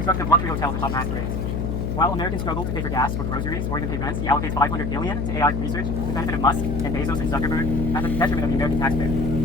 of luxury hotels atop mass parades. While Americans struggle to pay for gas or groceries or even pay rents, he allocates $500 billion to AI research to the benefit of Musk and Bezos and Zuckerberg at the detriment of the American taxpayer.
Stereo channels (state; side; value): noise; left; hum, 1 dB below the sound